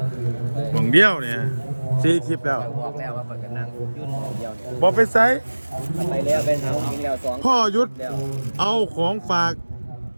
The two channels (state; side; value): inverted; both; correlation -1.00